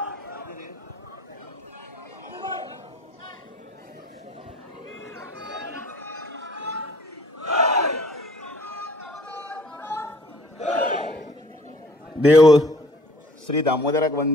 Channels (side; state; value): both; normal; correlation 0.55